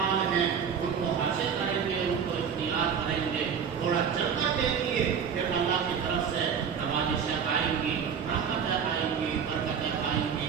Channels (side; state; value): left; quieter; 7.2 dB